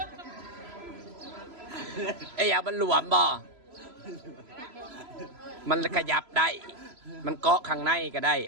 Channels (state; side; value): late; left; 3.0 ms